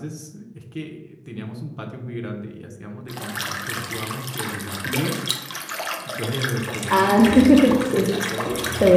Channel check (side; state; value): both; identical; correlation 1.00